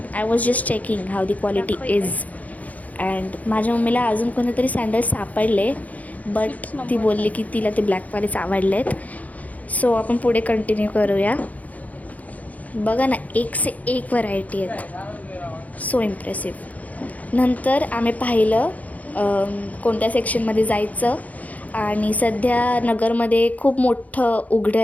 I was just checking how the quality is. And माझ्या मम्मीला अजून कोणतेतरी सँडल्स सापडले, बट ती बोलली की तिला ते ब्लॅकवालेच आवडलेत. सो आपण पुढे कंटिन्यू करूया. बघा ना, एक से एक व्हरायटी आहेत. So impressive. नंतर आम्ही पाहिलं कोणत्या सेक्शनमध्ये जायचं. आणि सध्या नगरमध्ये खूप मोठं उघडं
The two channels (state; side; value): late; right; 0.074 ms